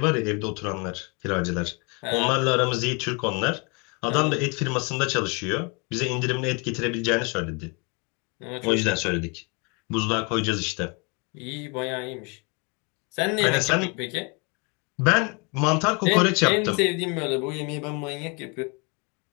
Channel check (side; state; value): right; quieter; 32.0 dB